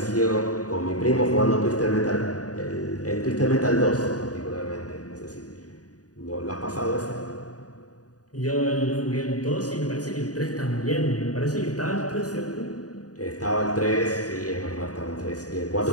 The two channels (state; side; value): late; right; 0.68 ms